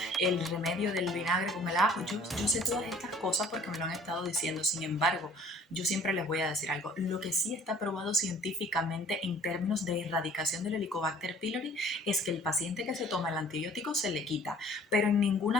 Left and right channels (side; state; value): both; normal; correlation 0.53